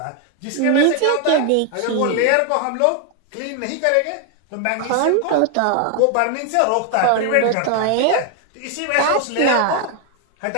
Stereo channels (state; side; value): different; both; correlation 0.01